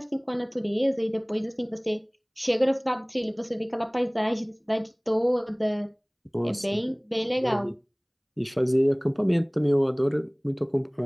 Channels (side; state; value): both; identical; correlation 1.00